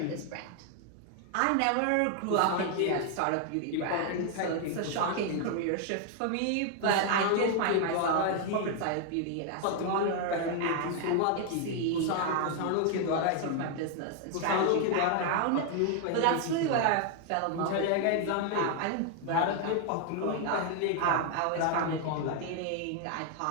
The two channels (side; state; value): both; different; correlation 0.00